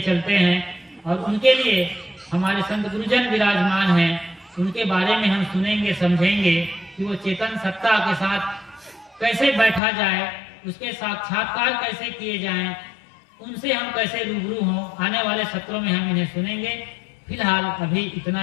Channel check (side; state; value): right; drops out; at 9.8 s